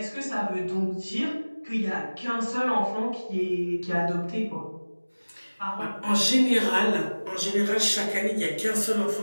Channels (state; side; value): inverted; both; correlation -1.00